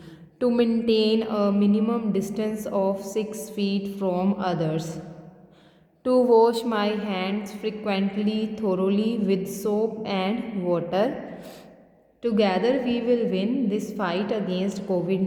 To maintain a minimum distance of 6 feet from others. To wash my hands frequently, thoroughly with soap and water. Together we will win this fight against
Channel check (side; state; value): both; identical; correlation 1.00